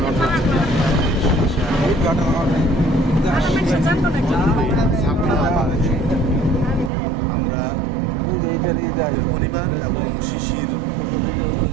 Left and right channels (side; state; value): left; drops out; at 6.9 s